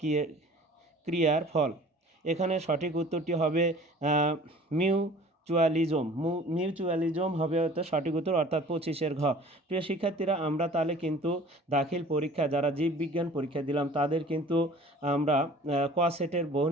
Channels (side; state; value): both; normal; correlation 0.47